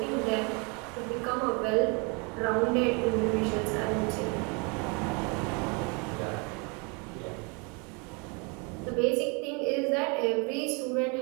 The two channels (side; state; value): left; quieter; 32.0 dB